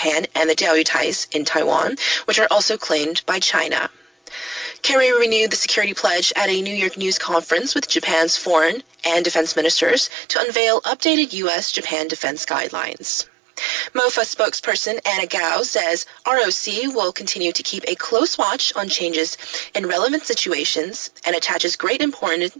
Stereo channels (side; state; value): left; drops out; at 10.1 s